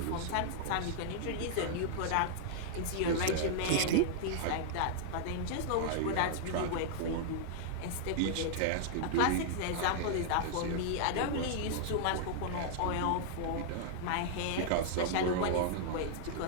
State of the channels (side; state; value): both; different; correlation -0.01